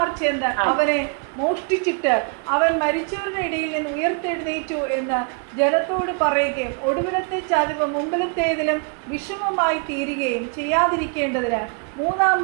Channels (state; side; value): quieter; left; 38.6 dB